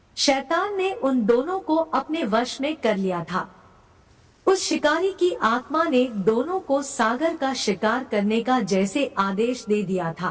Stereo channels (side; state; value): both; identical; correlation 1.00